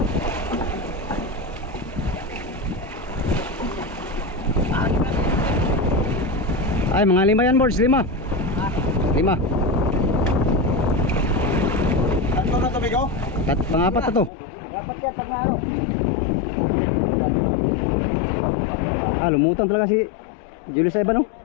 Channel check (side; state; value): right; drops out; at 14.3 s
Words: Ay, mga 5 yan, boards. 5. 5. Tatlo na tubig oh. Pang-apat na to. Dapat yan pag naano. Lumutang talaga si Julius Ivan, no?